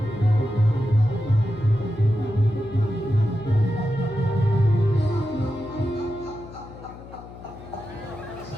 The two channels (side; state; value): left; noise; hum, 16 dB below the sound